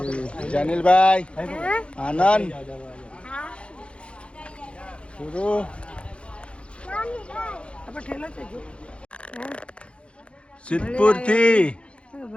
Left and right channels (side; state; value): right; late; 0.059 ms